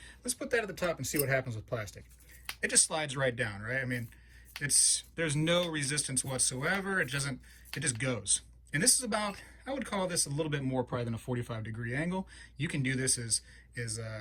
Let's put that at the top and see what happens with plastic. It just slides right down, right? I mean, there's no resistance whatsoever. It just goes. And this is about, I would call this a little bit more probably than a 45-degree angle. You can do this as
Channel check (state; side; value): identical; both; correlation 1.00